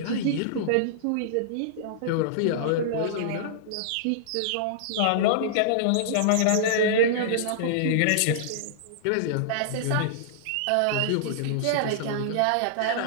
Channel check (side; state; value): both; different; correlation -0.02